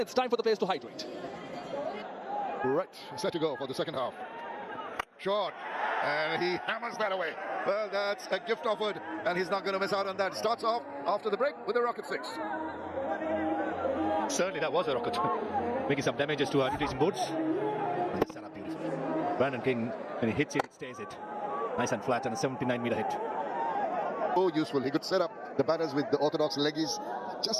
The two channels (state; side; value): identical; both; correlation 1.00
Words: time for the players to hydrate. Right, set to go for the second half. Short, and he hammers that away. Well, that's a gift offered, and he's not going to miss out on that. Starts off after the break with a rocket 6. Certainly that was a rocket. Making some damages to our retreating boards. Set up beautifully. Brandon King, when he hits it, it stays it. Nice and flat and a 79-meter hit. So useful. He could set up the batters with the orthodox leggies.